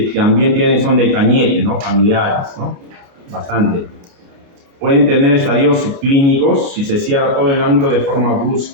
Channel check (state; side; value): late; left; 29 ms